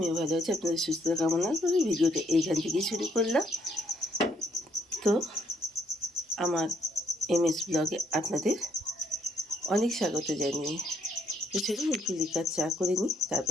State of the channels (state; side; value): normal; both; correlation 0.70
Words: ভালো আছি। আপনাদের সুস্থতা কামনা করে ভিডিওটা এইখান থেকেই শুরু করলাম। তো আমার MS ব্লগে আপনাদের অনেক স্বাগত জানিয়ে তো চলুন একটু লিকার চা করে নিই,